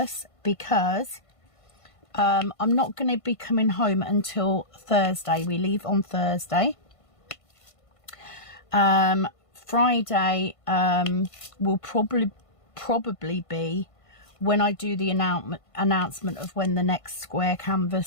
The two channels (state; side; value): late; right; 1.5 ms